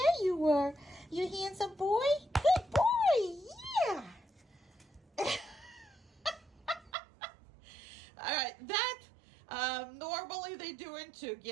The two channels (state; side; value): drops out; left; at 6.9 s